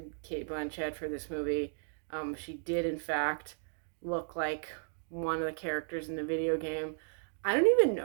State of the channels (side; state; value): left; silent; 55 dB below the other